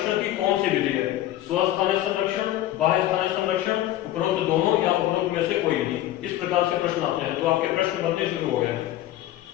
की कौन सी विधि है? स्वस्थानीय संरक्षण, बाह्य स्थानीय संरक्षण, उपरोक्त दोनों, या उपरोक्त में से कोई नहीं? इस प्रकार से प्रश्न आते हैं। तो आपके प्रश्न बनने शुरू हो गए हैं।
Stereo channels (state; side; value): quieter; right; 13.9 dB